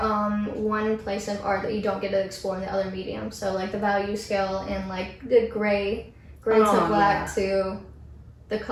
one place of art that you don't get to explore in the other medium. So like the value scale and like the gray to black to the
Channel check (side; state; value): both; identical; correlation 1.00